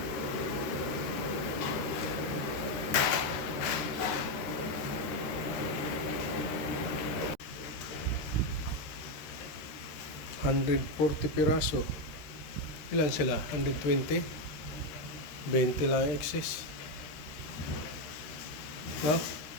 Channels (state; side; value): late; right; 13 ms